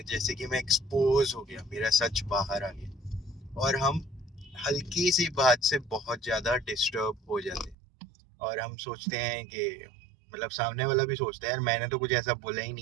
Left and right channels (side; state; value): left; drops out; at 7.8 s